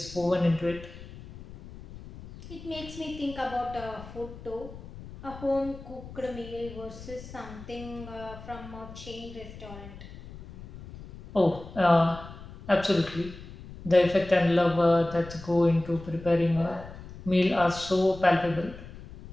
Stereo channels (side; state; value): left; noise; rumble, 15 dB below the sound